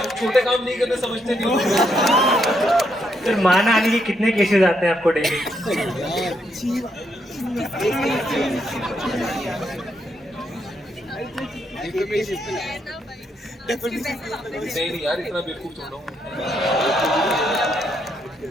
छोटे काम नहीं करने, समझते नहीं हो। सर मान आने के कितने केसेस आते हैं आपको डेली? नहीं यार, इतना बेवकूफ थोड़ा हूँ।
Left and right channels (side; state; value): both; normal; correlation 0.77